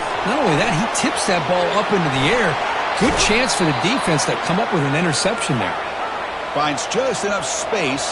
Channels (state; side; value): identical; both; correlation 1.00